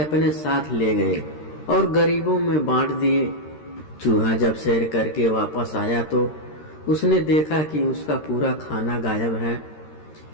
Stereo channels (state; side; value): late; right; 13 ms